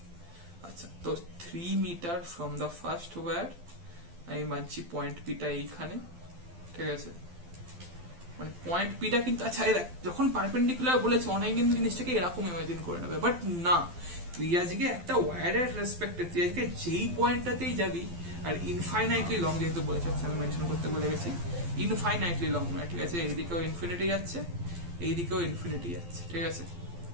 আচ্ছা, তো 3 meter from the first wire, আমি মানছি পয়েন্ট পিটা এইখানে, ঠিক আছে, মানে পয়েন্ট পিটা কিন্তু, আচ্ছা দেখ, যখন পারপেন্ডিকুলার বলেছে অনেক কিন্তু জিনিসটাকে এরকম ইমাজিন করে নেবে, বাট না, তুই আজকে একটা ওয়্যারের রেসপেক্টে তুই আজকে যেই পয়েন্টটাতেই যাবি, আর ইনফাইনাইটলি লং যেহেতু বলেছে, আমি মেনশন করতে বলে গেছি, ইনফাইনাইটলি লং নয়, ঠিক আছে, এইদিকেও ইনফিনিটি যাচ্ছে, এইদিকেও ইনফিনিটি যাচ্ছে, ঠিক আছে।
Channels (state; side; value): late; left; 12 ms